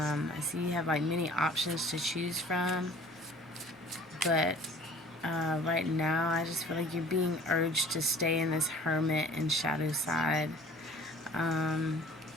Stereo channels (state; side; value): normal; both; correlation 0.47